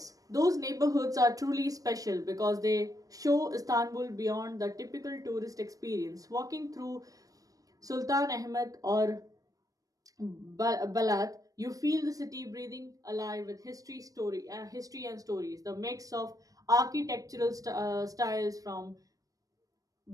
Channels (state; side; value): late; left; 0.17 ms